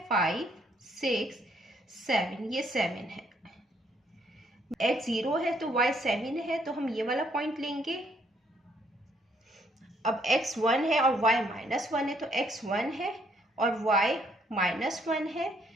5 6 7, ये 7 है। x 0 है तो y 7 है, तो हम ये वाला पॉइंट लेंगे। अब x 1 है और y -1 है, तो x 1 है और y -1 है।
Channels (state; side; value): normal; both; correlation 0.69